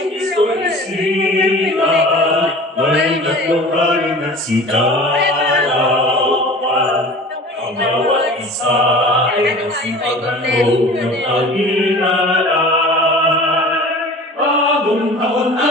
Kristo'y isipan, may nagmamahalin at sikalawan. Ang bawat isa ay nasipagandong ng pag-inalay. Bagong taon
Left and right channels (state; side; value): normal; both; correlation 0.41